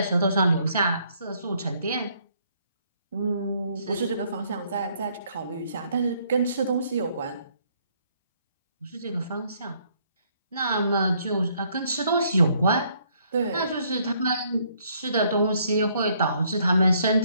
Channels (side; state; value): both; inverted; correlation -0.68